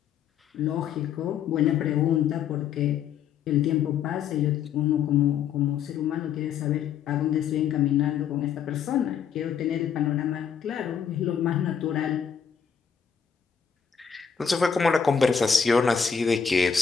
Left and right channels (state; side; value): quieter; right; 7.4 dB